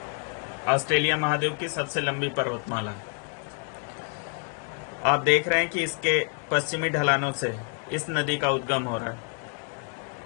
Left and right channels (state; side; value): quieter; right; 38.1 dB